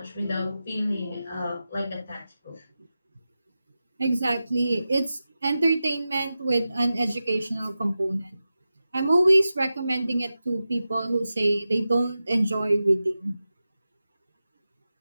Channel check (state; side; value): inverted; both; correlation -0.93